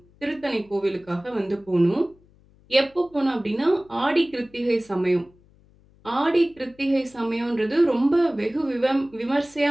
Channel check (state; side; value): noise; left; hum, 29 dB below the sound